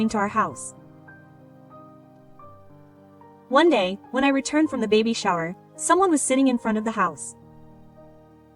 to our house. One day, when I returned from the baby shower, someone was sitting in front of the house.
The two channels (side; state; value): both; identical; correlation 1.00